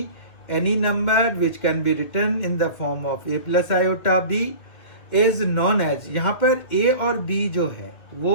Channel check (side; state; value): right; late; 2.5 ms